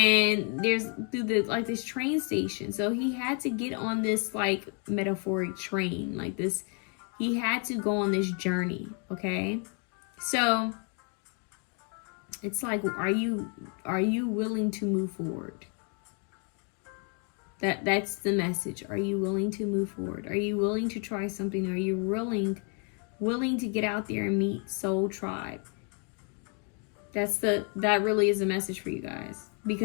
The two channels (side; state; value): right; quieter; 39.2 dB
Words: there's through this train station. So he had to get on this like metaphoric train, like this. He had to go on this journey. Okay, so it's like, are you willing to move forward? That's the message. Are you willing to move forward? Are you willing to try something? Are you willing to get out there and meet Soul Tribe? That really is a message for you guys,